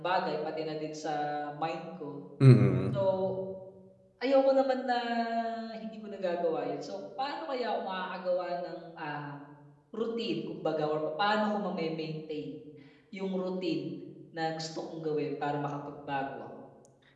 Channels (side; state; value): both; identical; correlation 1.00